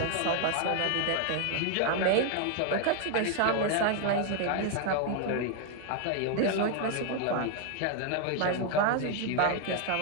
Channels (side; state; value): both; different; correlation 0.01